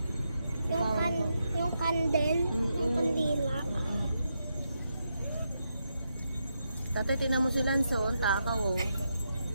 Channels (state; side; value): inverted; both; correlation -0.84